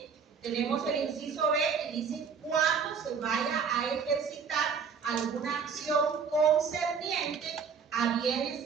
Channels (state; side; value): quieter; left; 6.1 dB